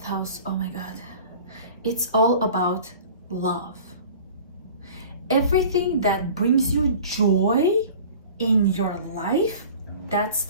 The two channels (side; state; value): both; inverted; correlation -0.43